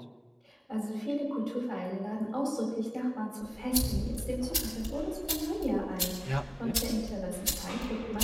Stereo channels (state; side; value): identical; both; correlation 1.00